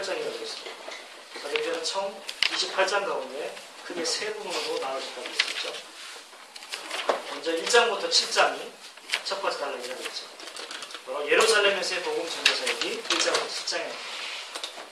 했습니다. 사도행전은 총 28장 가운데 크게 세 부분으로 나눠졌다고 했었죠. 먼저 1장부터 7장이 첫 번째 단락이라고 했죠. 바로 예루살렘에서의 복음 전도 사역이 1장부터 7장입니다.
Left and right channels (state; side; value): identical; both; correlation 1.00